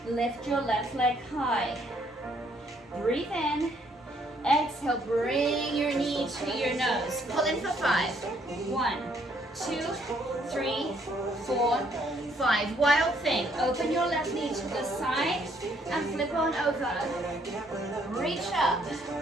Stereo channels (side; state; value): both; normal; correlation 0.68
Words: Lift your left leg high. Breathe in. Exhale, bring your knee to your nose. Pull in for 5. 1, 2, 3, 4, 5. Wild thing. Open your left knee to the side and flip on over. Reach up.